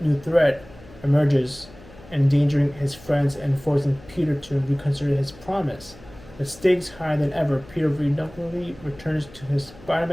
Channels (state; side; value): noise; left; hum, 21 dB below the sound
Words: new threat emerges, endangering his friends and forcing Peter to reconsider his promise. With stakes higher than ever, Peter reluctantly returns to his